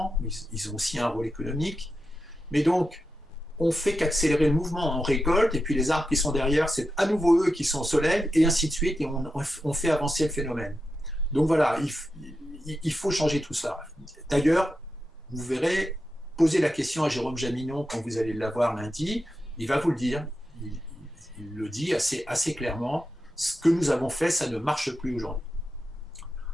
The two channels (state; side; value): normal; both; correlation 0.89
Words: ils ont aussi un rôle économique. Mais donc, on fait qu'accélérer le mouvement, on récolte, et puis les arbres qui sont derrière, c'est à nouveau eux qui sont au soleil, et ainsi de suite, et on fait avancer le phénomène. Donc voilà, il faut changer tout ça. D'ailleurs, vous verrez, posez la question à Jérôme Jaminon quand vous allez l'avoir lundi, il va vous le dire, il le dit assez clairement, ce que nous avons fait, ça ne marche plus aujourd'hui.